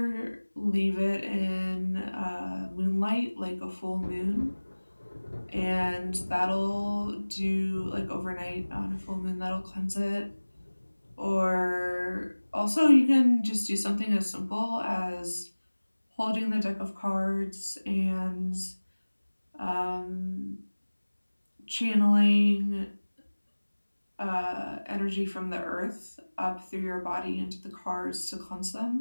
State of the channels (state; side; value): inverted; both; correlation -1.00